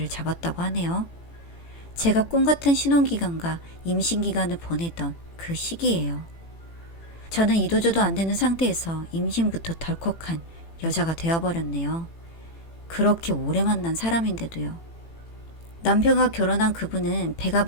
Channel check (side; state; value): right; late; 18 ms